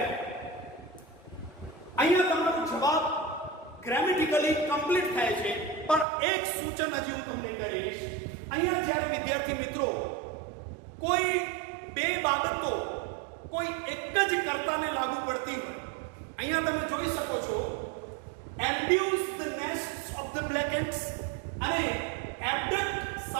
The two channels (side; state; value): left; drops out; at 6.1 s